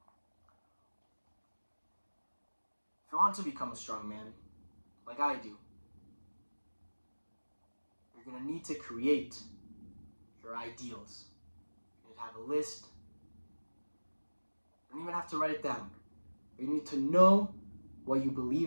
If you want to become a strong man, like I do, you're going to need to create your ideals. You need to have a list. You don't even have to write it down. You need to know what you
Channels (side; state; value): both; inverted; correlation -1.00